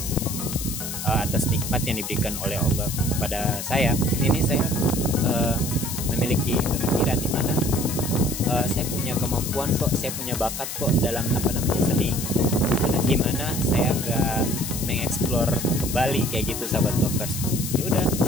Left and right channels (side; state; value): left; noise; hiss, 6 dB below the sound